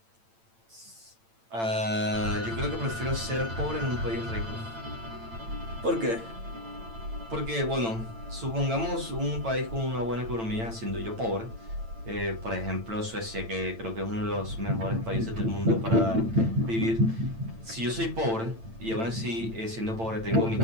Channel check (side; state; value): left; late; 8.9 ms